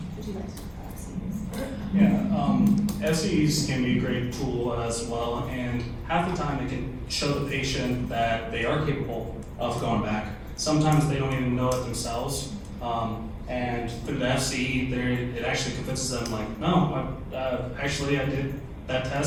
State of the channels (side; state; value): both; identical; correlation 1.00